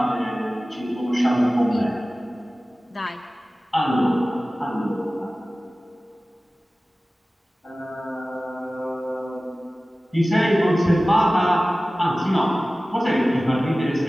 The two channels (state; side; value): normal; both; correlation 0.97